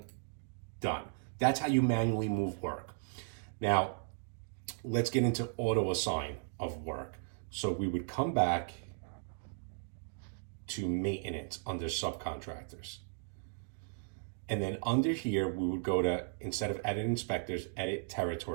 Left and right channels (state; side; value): silent; left; digital silence